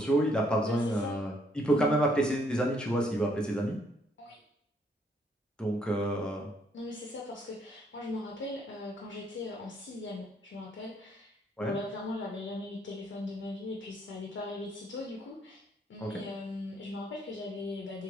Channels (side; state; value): both; normal; correlation 0.68